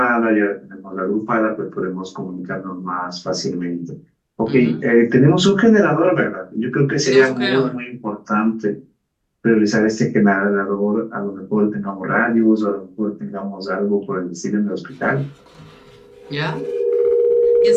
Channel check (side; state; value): both; identical; correlation 1.00